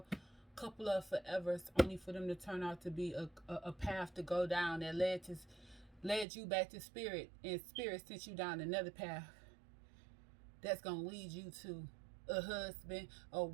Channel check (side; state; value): left; drops out; at 6.2 s